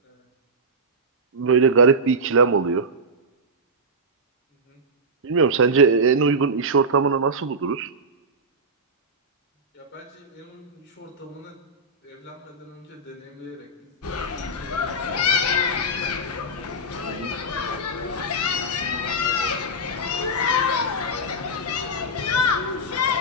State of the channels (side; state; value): both; normal; correlation -0.11